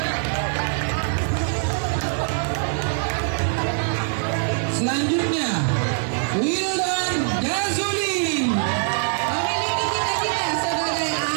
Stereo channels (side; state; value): left; silent; 63 dB below the other